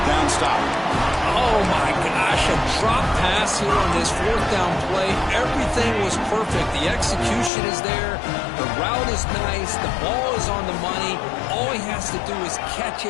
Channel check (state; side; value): drops out; right; at 7.5 s